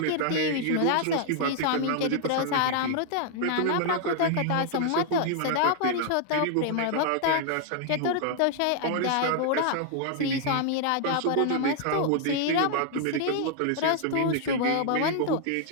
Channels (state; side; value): different; both; correlation 0.00